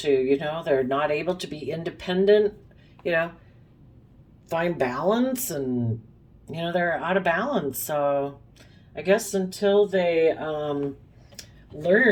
they're not able to be independent, find balance, and, they're out of balance. So I guess until they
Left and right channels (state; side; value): identical; both; correlation 1.00